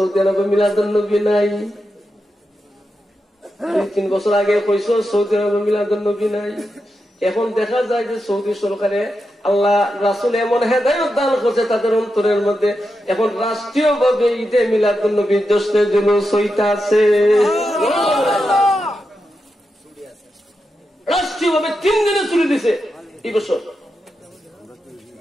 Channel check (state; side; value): normal; both; correlation 0.88